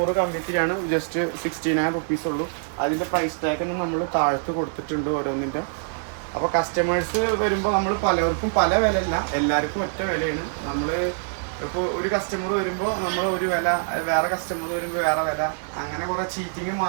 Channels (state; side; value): silent; left; digital silence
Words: കമ്പിത്തിരിയാണ്, ജസ്റ്റ് 69 റുപ്പീസ് ഉള്ളൂ. അതിൻ്റെ പ്രൈസ് ടാഗ് നമ്മൾ താഴത്ത് കൊടുത്തിട്ടുണ്ട് ഓരോന്നിൻ്റെ. അപ്പോൾ കസ്റ്റമേഴ്സ് വരുമ്പോൾ നമ്മൾ പലർക്കും പല വിലയല്ല, എല്ലാവർക്കും ഒറ്റ വിലയാണ്. നമ്മൾ ഇപ്പോൾ ഒരു കസ്റ്റമർ വരുമ്പോൾ നമ്മൾ ഒരു വില, വേറെ കസ്റ്റമർ വരുമ്പോൾ വേറെ വില, അങ്ങനെ കുറെ ചീറ്റിങ്